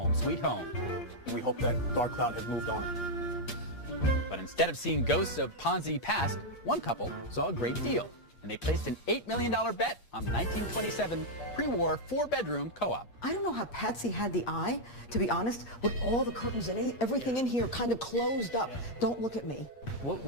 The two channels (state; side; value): late; right; 8.5 ms